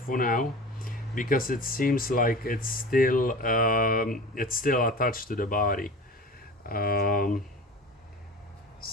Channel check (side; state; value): both; normal; correlation 0.36